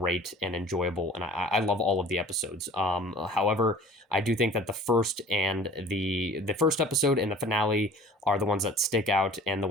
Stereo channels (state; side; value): normal; both; correlation 0.45